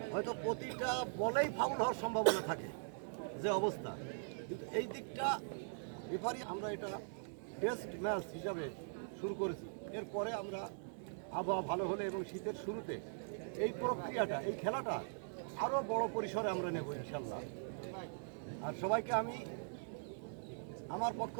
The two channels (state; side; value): silent; left; digital silence